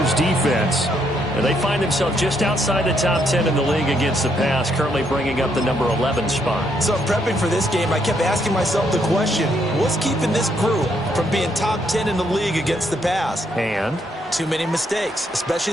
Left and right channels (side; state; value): both; normal; correlation 0.73